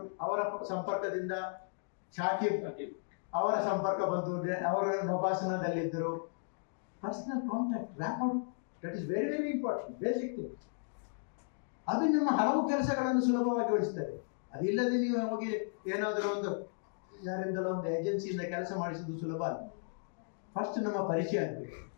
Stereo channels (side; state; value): right; silent; digital silence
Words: ಅವರ ಸಂಪರ್ಕದಿಂದ, ಶಾಕಿಬ್ ಅವರ ಸಂಪರ್ಕ ಬಂದು ಅವರು ನಭಾಸನದಲ್ಲಿದ್ದರು. Personal contact, rapport, that is very very important, basic thing. ಅದು ನಿಮ್ಮ ಹಲವು ಕೆಲಸಗಳನ್ನು ಸುಲಭವಾಗಿ ಗೊಳಿಸ್ತದೆ. ಅದಿಲ್ಲದೆ ನೀವು ಹೋಗಿ ಏನಾದರೂ ಒಂದು ಯಾರಿಂದಲೋ ಒಂದು ಏಜೆನ್ಸಿಯಿಂದ ಕೆಲಸ ಮಾಡಿಸುವುದು ಸುಲಭ ಅಲ್ಲ. ಫಸ್ಟ್ ನಮ್ಮ ಪರಿಚಯ ಆಗಬೇಕು.